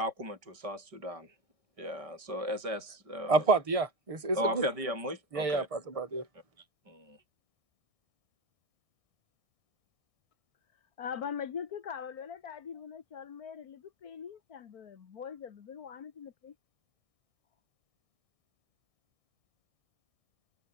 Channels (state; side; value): late; left; 1.6 ms